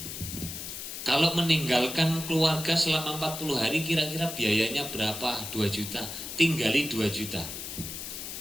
Kalau meninggalkan keluarga selama 40 hari kira-kira biayanya berapa? 2 juta. Tinggali 2 juta.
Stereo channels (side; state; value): left; noise; hiss, 8 dB below the sound